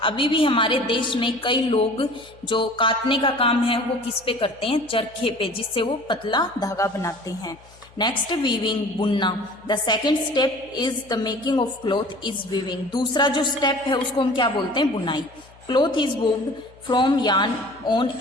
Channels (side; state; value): left; noise; hum, 26 dB below the sound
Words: अभी भी हमारे देश में कई लोग जो काटने का काम है वो किस पे करते हैं? चरखे पे, जिससे वो पतला धागा बनाते हैं। नेक्स्ट, वीविंग, बुनना। The second step is the making of cloth is weaving. दूसरा जो स्टेप है उसको हम क्या बोलते हैं? बुनाई। Cloth is woven from yarn on